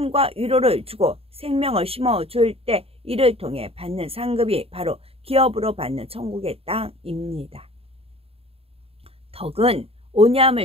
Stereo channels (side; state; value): left; late; 0.28 ms